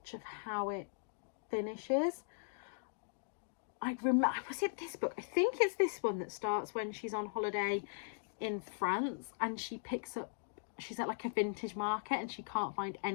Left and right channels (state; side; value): silent; right; digital silence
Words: of how it finishes. Was it this book? I think it's this one that starts when she's on holiday in France and she's at like a vintage market and she can't find